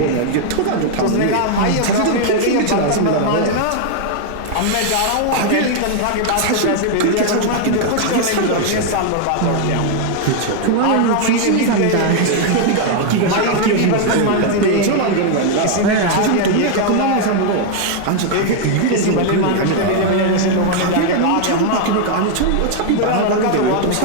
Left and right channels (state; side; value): different; both; correlation 0.00